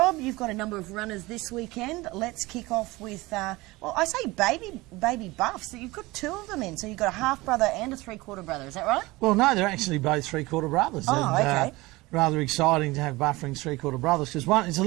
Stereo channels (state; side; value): quieter; left; 21.1 dB